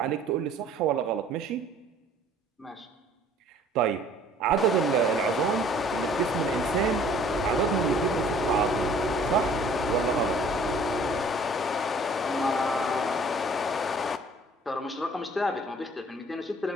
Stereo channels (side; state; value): both; normal; correlation 0.54